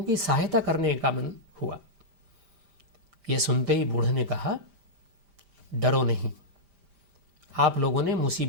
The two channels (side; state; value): left; late; 5.0 ms